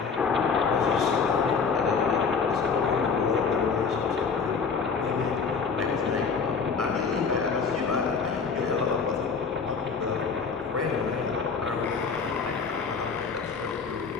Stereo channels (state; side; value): quieter; right; 5.4 dB